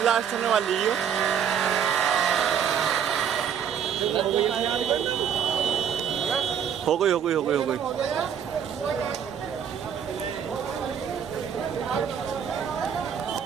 blast होने वाली है। हो गई हो गई हो गई हो गई।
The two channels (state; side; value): quieter; left; 8.1 dB